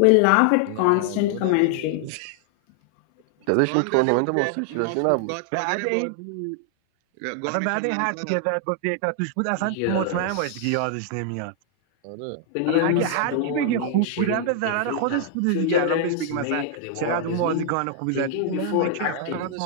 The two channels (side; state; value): both; different; correlation 0.00